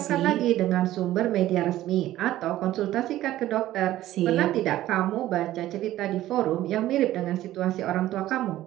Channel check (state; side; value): quieter; left; 14.4 dB